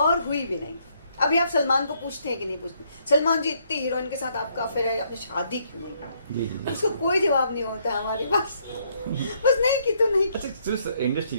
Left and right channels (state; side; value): inverted; both; correlation -0.71